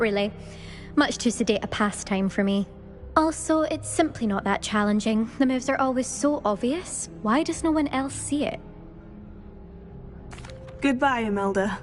Much too sedate a pastime for me. Also, it's simply not that challenging. The moves are always so obvious. Why does no one else see it? Goodbye, Imelda.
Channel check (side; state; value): both; identical; correlation 1.00